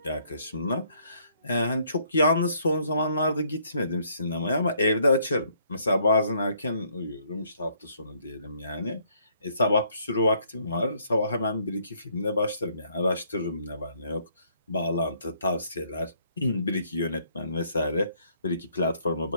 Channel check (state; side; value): inverted; both; correlation -0.67